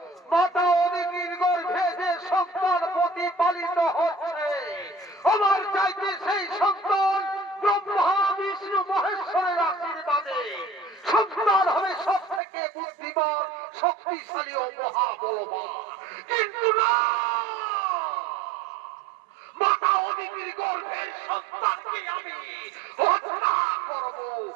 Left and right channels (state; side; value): drops out; left; at 12.4 s